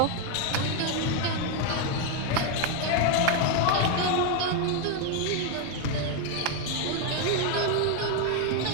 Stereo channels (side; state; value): both; different; correlation 0.01